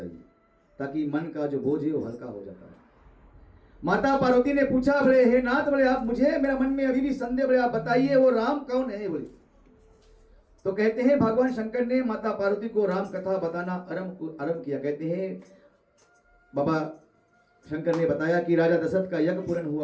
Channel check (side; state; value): both; identical; correlation 1.00